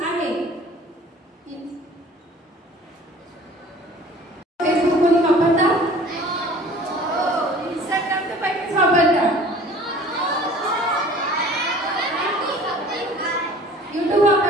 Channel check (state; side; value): normal; both; correlation 0.47